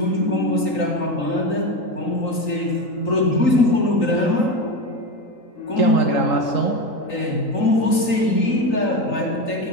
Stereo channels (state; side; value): late; right; 3.9 ms